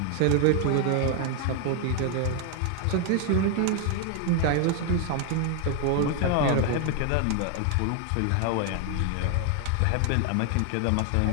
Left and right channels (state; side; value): different; both; correlation 0.00